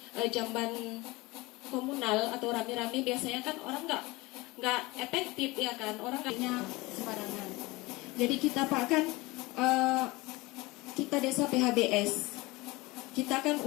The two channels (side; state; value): right; quieter; 22.1 dB